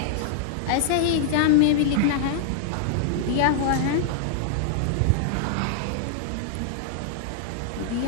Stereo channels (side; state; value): both; different; correlation -0.01